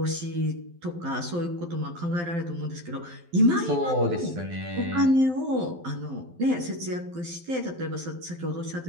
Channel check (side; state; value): left; late; 12 ms